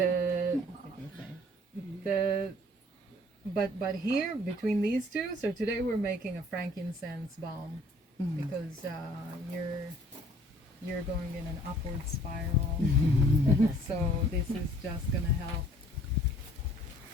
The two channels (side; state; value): both; normal; correlation 0.57